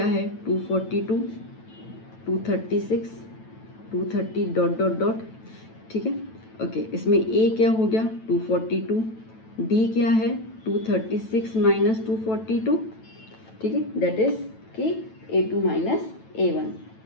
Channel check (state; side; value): late; right; 9.1 ms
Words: है 242 236 230 डॉट डॉट डॉट। ठीक है, ओके, इसमें A क्या हो गया 242, D क्या है 236 माइनस 242। ठीक है, दैट इज कि A2 माइनस A1।